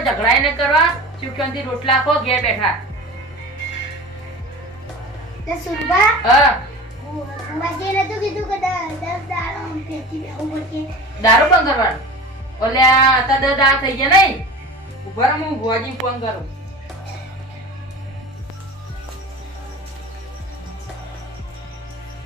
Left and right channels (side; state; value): both; normal; correlation 0.35